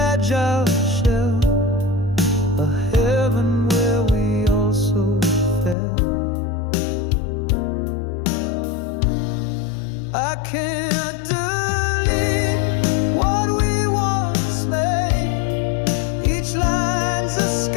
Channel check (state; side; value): drops out; right; at 5.8 s